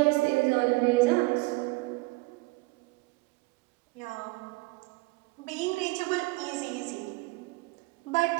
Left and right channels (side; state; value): left; quieter; 24.7 dB